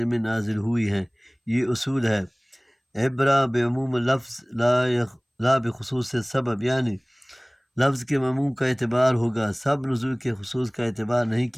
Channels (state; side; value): identical; both; correlation 1.00